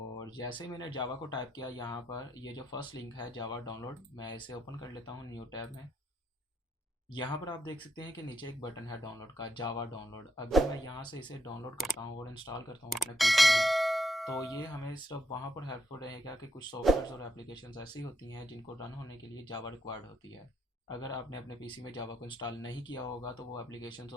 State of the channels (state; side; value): normal; both; correlation 0.78